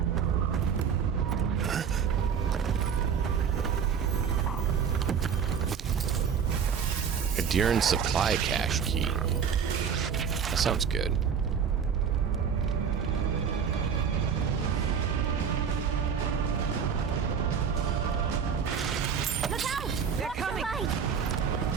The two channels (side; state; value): left; quieter; 7.1 dB